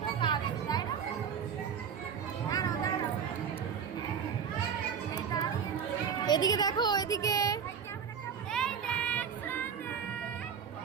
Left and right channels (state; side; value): quieter; left; 7.3 dB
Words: এদিকে দেখো, এদিকে